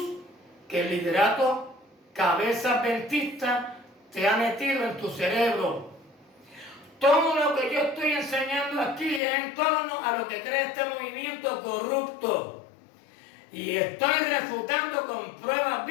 que el liderato cabeza adventista te ha metido en tu cerebro. Todo lo que yo estoy enseñando aquí es en torno a lo que cree este movimiento corrupto. Y estoy refutando con pruebas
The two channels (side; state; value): right; drops out; at 9.2 s